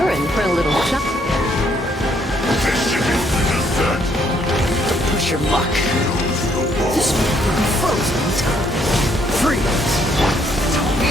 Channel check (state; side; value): normal; both; correlation 0.69